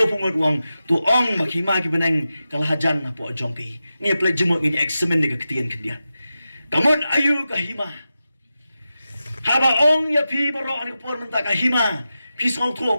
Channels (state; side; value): inverted; both; correlation -0.92